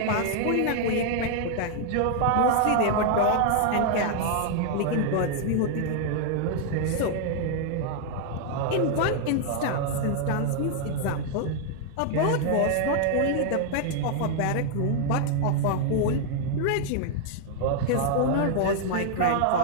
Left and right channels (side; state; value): both; different; correlation 0.00